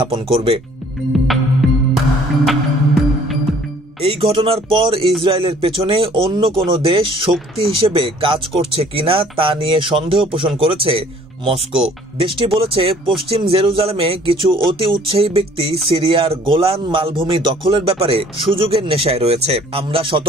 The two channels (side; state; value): both; normal; correlation 0.56